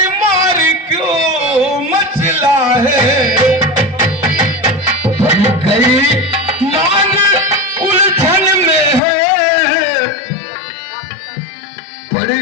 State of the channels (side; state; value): right; drops out; at 9.0 s